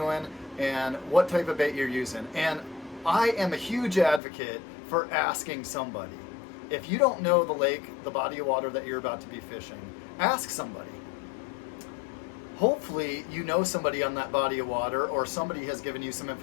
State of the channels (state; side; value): drops out; right; at 4.2 s